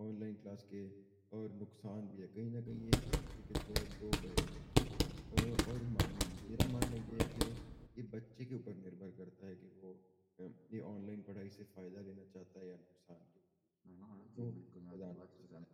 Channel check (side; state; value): both; identical; correlation 1.00